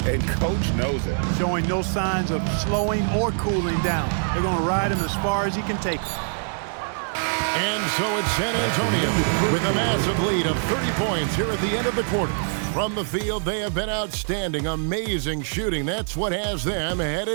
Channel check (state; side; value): silent; left; digital silence